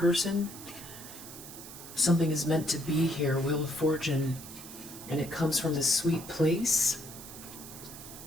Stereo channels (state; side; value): noise; right; hiss, 14 dB below the sound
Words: something is meant to be here, Wheel of Fortune, and it comes from this sweet place.